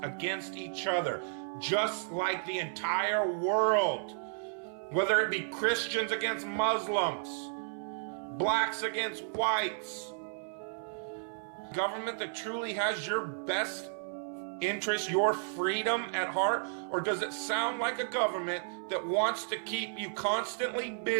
against each other, just like the entire world. Whether it be Christians against Muslims, blacks against whites, government that truly has your best interest, your freedom at heart? Or does it sound like a government that wants to keep you constantly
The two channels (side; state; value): left; silent; 56 dB below the other